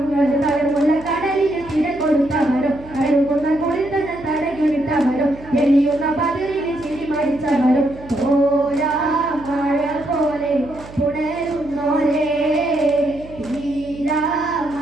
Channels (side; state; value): right; noise; hum, 18 dB below the sound